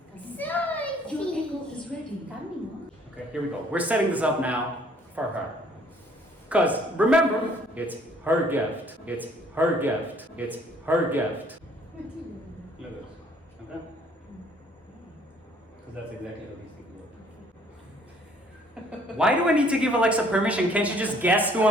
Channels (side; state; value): both; normal; correlation 0.60